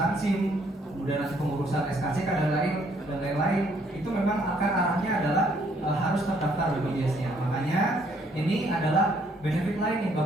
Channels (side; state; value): both; normal; correlation 0.67